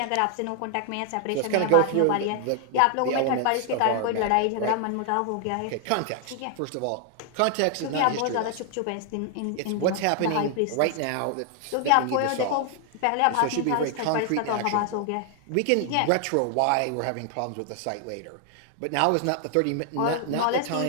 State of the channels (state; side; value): different; both; correlation 0.00